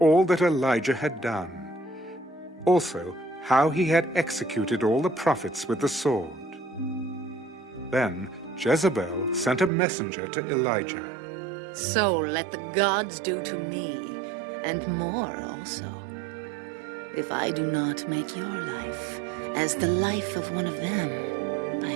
that Elijah had done, also how he had executed all the prophets with the sword. Then Jezebel sent a messenger to Elijah. So let the gods do to me, and more also, if I do not make your life as the life of one of them by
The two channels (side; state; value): left; drops out; at 9.7 s